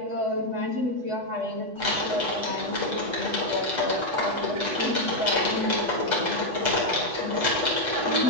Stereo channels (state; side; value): late; left; 8.1 ms